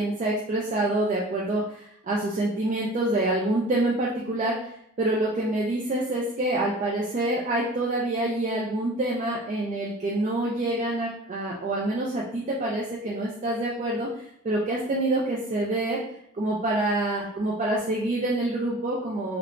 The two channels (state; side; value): normal; both; correlation 0.42